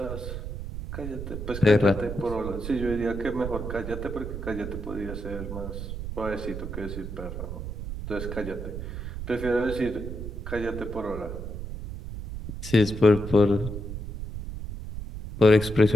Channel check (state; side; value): noise; right; rumble, 7 dB below the sound